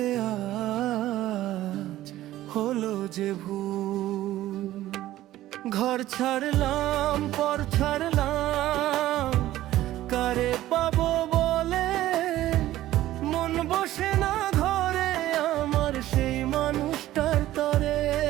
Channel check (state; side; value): quieter; left; 14.7 dB